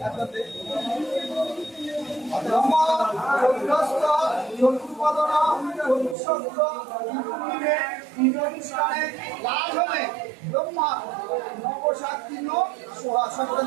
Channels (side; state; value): left; drops out; at 6.2 s